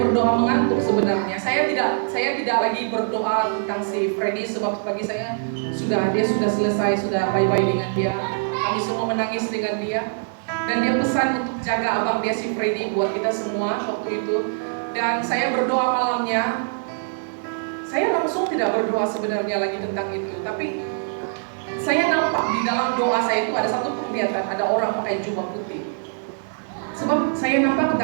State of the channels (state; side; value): silent; left; digital silence